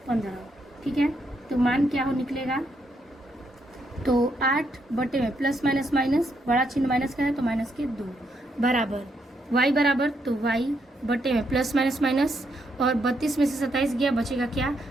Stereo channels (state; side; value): normal; both; correlation 0.77